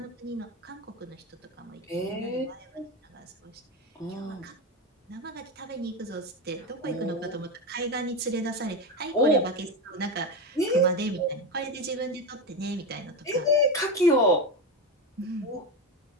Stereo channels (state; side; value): normal; both; correlation 0.15